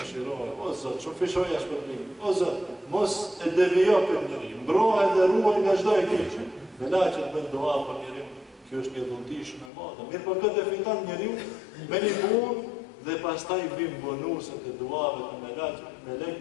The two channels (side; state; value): right; drops out; at 9.7 s